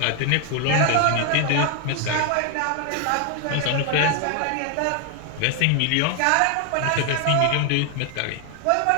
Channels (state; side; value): different; both; correlation 0.00